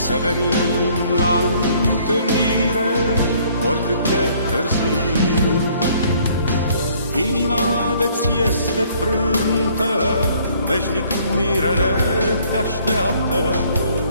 să venim la întâlnire, oricât de târziu. Inima de-ți este frântă, veșnic mirele te așteaptă,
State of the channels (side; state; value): both; inverted; correlation -0.61